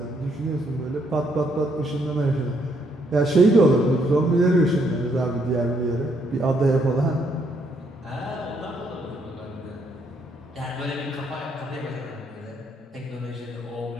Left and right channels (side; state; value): both; normal; correlation 0.72